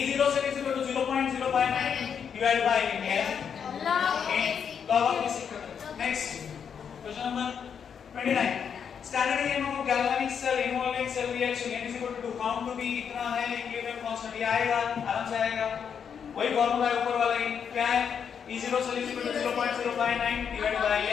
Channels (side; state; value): right; quieter; 7.3 dB